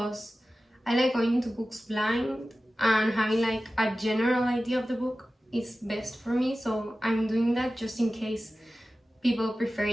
I like going into books blind, and having like a general idea of the book is best for me, so I'm doing that just in case people prefer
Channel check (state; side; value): normal; both; correlation 0.95